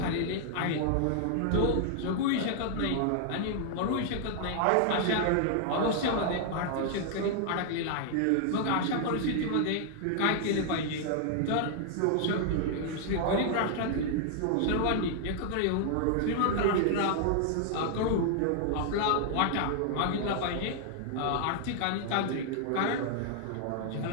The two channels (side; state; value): both; different; correlation 0.00